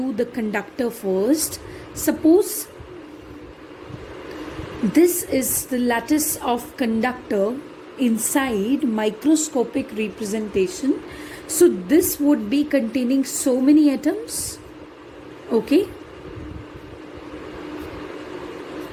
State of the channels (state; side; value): identical; both; correlation 1.00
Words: the conductor first. Suppose this is the lattice of conductor inside microscopic representation. So this would be containing so many atoms, okay?